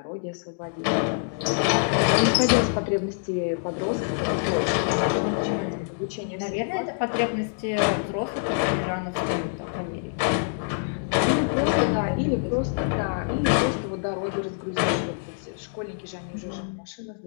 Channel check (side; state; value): right; silent; digital silence